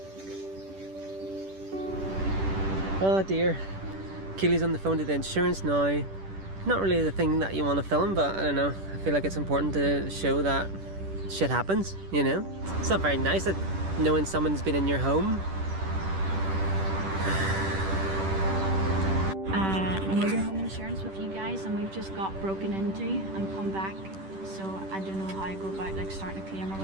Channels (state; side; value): late; left; 10 ms